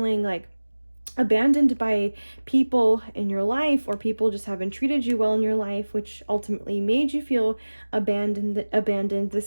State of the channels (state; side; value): inverted; both; correlation -1.00